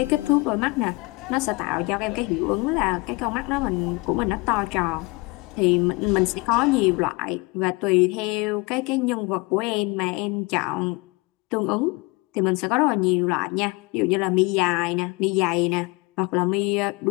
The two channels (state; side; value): quieter; right; 26.1 dB